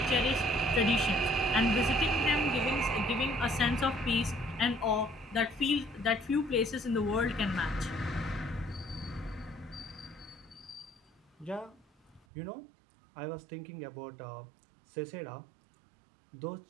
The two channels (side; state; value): left; drops out; at 12.2 s